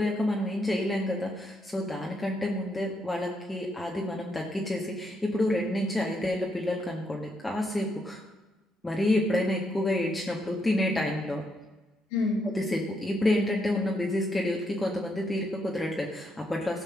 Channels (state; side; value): normal; both; correlation 0.78